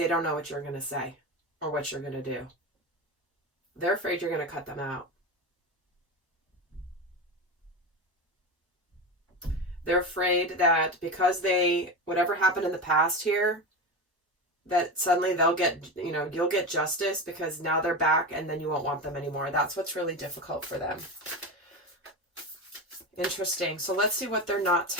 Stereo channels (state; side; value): normal; both; correlation 0.22